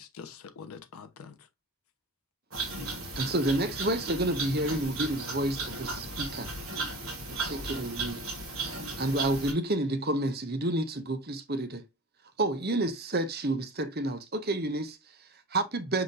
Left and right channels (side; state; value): both; normal; correlation 0.37